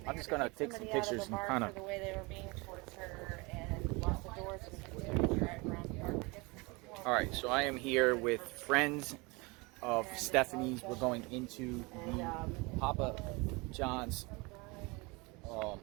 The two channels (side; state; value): left; quieter; 26.4 dB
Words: I'm just gonna take some pictures and kind of. The way they were being towards her and locked the doors and continued to drive around the park. All right, so I am here with friends of Stephanie's. We're going into the Papa John's